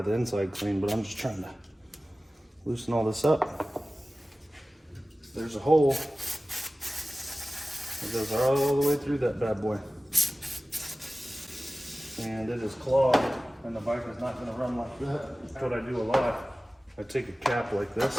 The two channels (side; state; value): both; normal; correlation 0.97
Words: the inside clean, but I'm just trying to Loosen all this up. There's a hole that goes all the way through that bad boy. And it is clogged, and the bike is not going to run like that. That's what I do a lot. I take a cap like